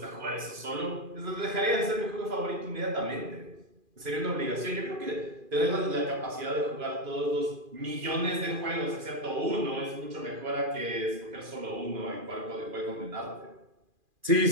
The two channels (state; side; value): late; left; 2.4 ms